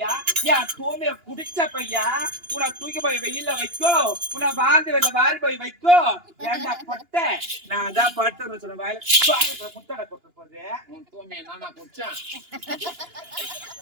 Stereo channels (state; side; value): late; left; 2.9 ms